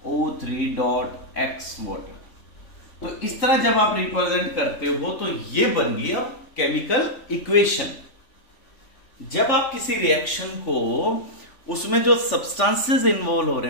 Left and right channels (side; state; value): right; late; 3.4 ms